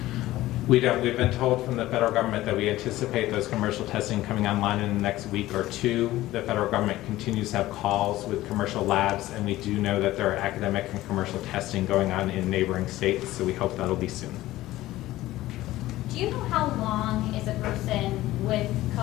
We don't. We've been told from the federal government that we anticipate those commercial testing coming online in the next week or two. The federal government continues to have calls with commercial labs, and we do know that there are academic and commercial testing going on in neighboring states, so we hope that'll be soon. Do you know how long is a person with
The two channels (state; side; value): quieter; right; 16.2 dB